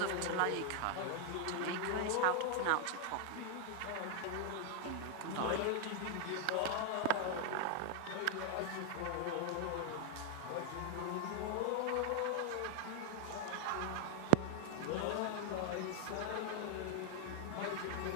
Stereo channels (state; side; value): different; both; correlation 0.00